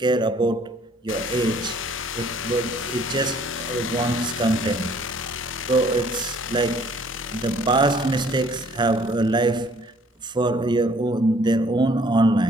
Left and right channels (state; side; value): normal; both; correlation 0.59